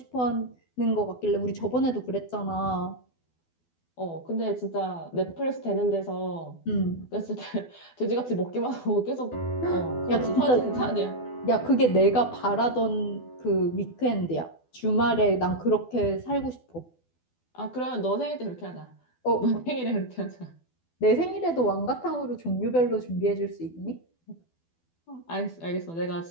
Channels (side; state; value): right; late; 12 ms